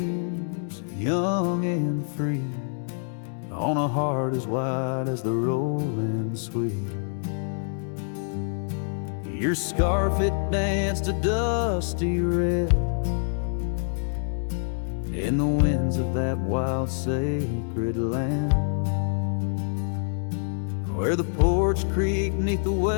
young and free on a heart as wide as the rolling sweet. Your scarf, it danced a dusty red in the winds of that wild sacred land, where the porch creaked neath the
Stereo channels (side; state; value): right; silent; digital silence